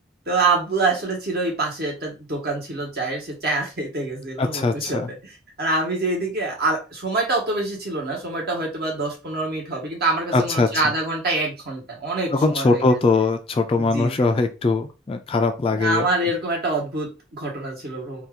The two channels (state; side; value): normal; both; correlation 0.40